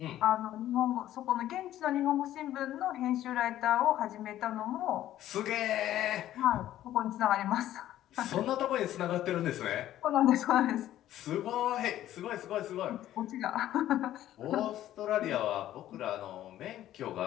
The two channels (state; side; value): quieter; right; 13.0 dB